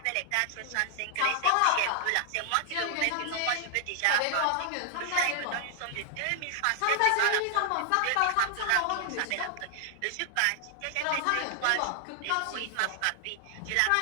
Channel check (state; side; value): different; both; correlation 0.00